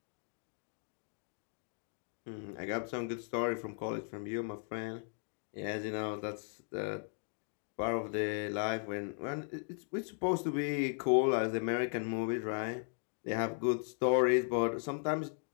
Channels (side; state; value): right; silent; 53 dB below the other